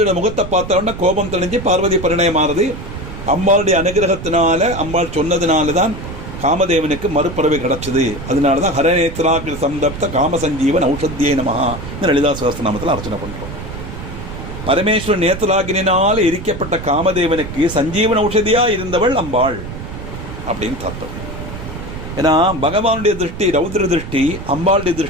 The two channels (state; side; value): noise; right; rumble, 10 dB below the sound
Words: முகத்தை பார்த்தோன்னா கோபம் தெளிஞ்சு பார்வதி பரிணயமானது. அம்பாளுடைய அனுகிரகத்தினால, அம்பாள் சொன்னதுனால தான் காமதேவனுக்கு மறுபிறவை கிடைச்சது. அதனால தான் ஹரநேத்ராகில் சந்தப்த காமசஞ்சீவன் ஔஷத்தியே நமஹா லலிதா சகஸ்ரநாமத்தில் அர்ச்சனை பண்ணுறோம். பரமேஸ்வரன் நேத்ராகினால் எரிக்கப்பட்ட காமதேவனுக்கு சஞ்சீவன் ஔஷதியா இருந்தவள் அம்பாள் அப்படின்னு தாத்தம். ஏன்னா பகவானுடைய திருஷ்டி ரௌத்ர திருஷ்டி, அம்பாளுடைய